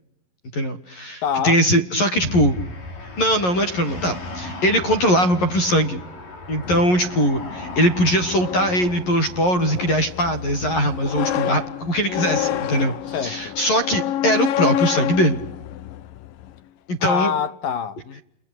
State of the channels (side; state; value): right; late; 11 ms